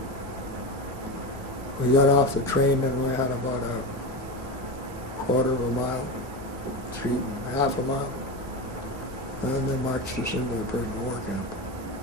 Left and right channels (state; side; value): normal; both; correlation 0.20